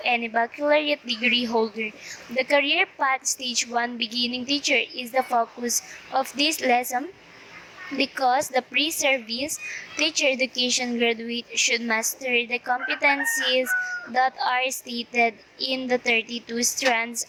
any baccalaureate degree holder. The career path stage 1 beginning teacher is the focus of this lesson, because the pre-service teacher education graduate should master the competencies that are stated in the 32 strands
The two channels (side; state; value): both; identical; correlation 1.00